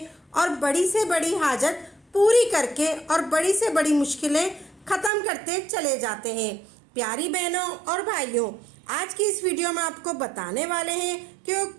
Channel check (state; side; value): drops out; left; at 5.1 s